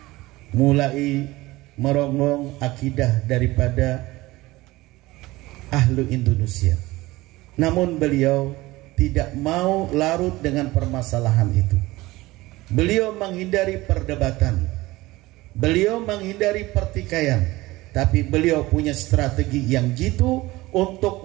mulai merongrong akidah daripada ahlu Indonesia. Namun beliau tidak mau larut dengan permasalahan itu. Beliau menghindari perdebatan, beliau menghindari pertikaian, tapi beliau punya strategi yang jitu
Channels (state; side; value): quieter; left; 19.4 dB